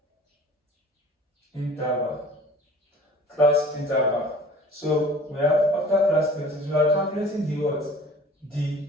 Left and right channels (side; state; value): both; normal; correlation 0.46